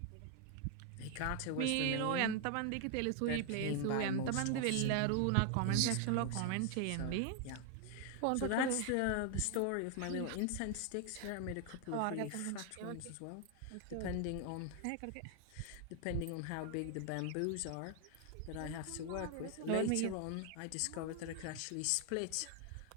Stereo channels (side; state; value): both; different; correlation 0.00